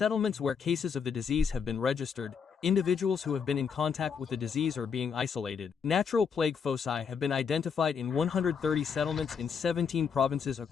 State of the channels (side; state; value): right; quieter; 6.5 dB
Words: where cases of the disease have been registered, individuals who have been in contact with the disease are being isolated. Natural plague foci have been identified in 130 settlements in 17 provinces